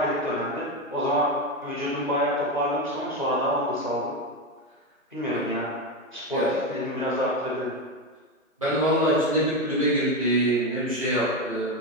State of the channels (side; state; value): both; normal; correlation 0.14